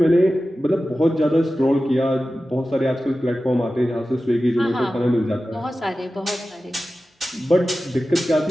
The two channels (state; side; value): normal; both; correlation 0.94